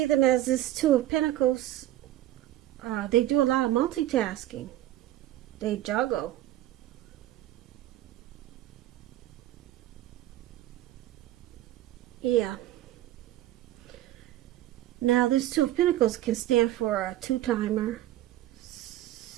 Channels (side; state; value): left; quieter; 14.1 dB